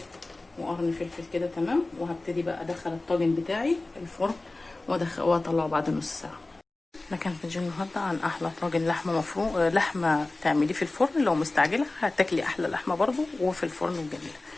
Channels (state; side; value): quieter; right; 3.0 dB